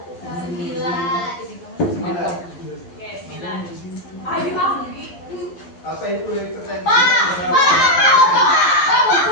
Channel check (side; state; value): right; late; 11 ms